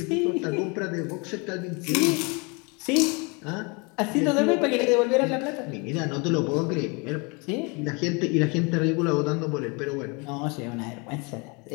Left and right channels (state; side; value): quieter; right; 30.3 dB